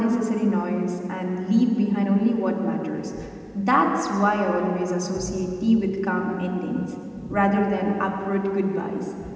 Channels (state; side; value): identical; both; correlation 1.00